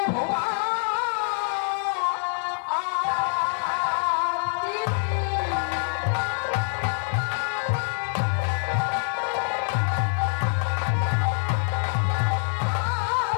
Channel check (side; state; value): right; silent; digital silence